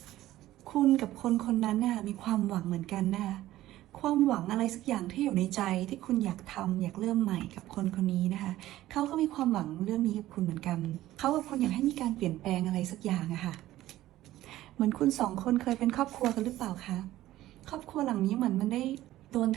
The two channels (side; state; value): left; quieter; 15.0 dB